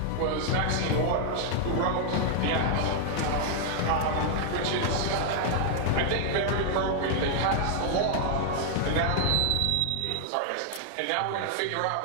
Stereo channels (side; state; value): both; different; correlation 0.00